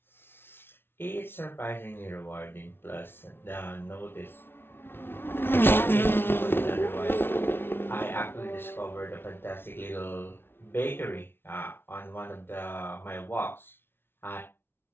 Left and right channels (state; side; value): late; right; 0.11 ms